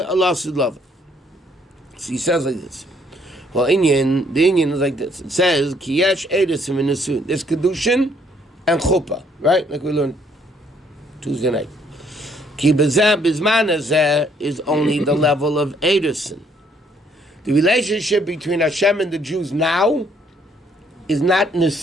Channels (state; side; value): normal; both; correlation 0.66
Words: Ulosid Lovi? So he says like this. Well, the Indian is like this. It says, Kiyesh Edesim in the Sun. There's Kedushin and Chuppah, right? Like we learned Tuesday night. Ki Bezeh Bizman Azeh is only the level of Edison. The relationship between Hashem and the Jews now is not